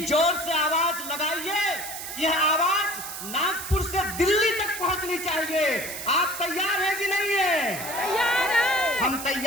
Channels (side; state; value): right; noise; hiss, 8 dB below the sound